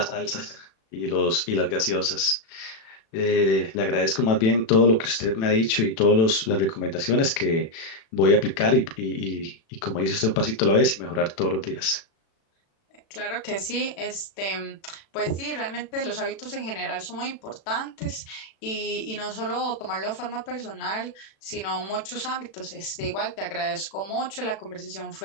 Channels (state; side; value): late; right; 36 ms